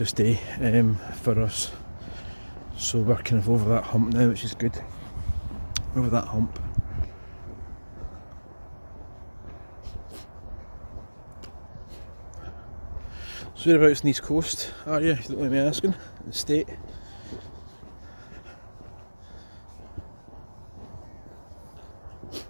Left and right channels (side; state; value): both; inverted; correlation -1.00